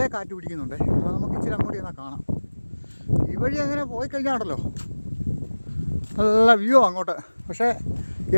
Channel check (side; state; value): both; inverted; correlation -1.00